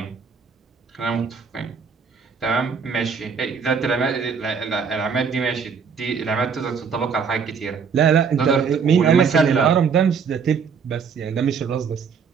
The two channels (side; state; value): left; quieter; 6.1 dB